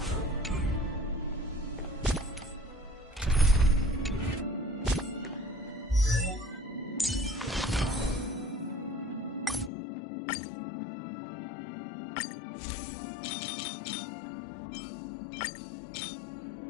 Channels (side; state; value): right; drops out; at 9.7 s